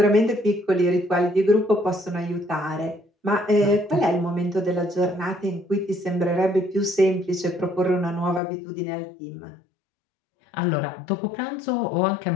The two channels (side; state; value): right; drops out; at 8.4 s